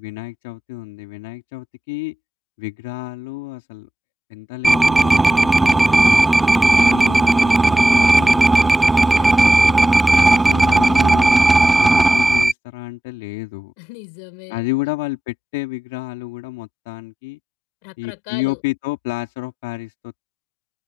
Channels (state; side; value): normal; both; correlation 0.92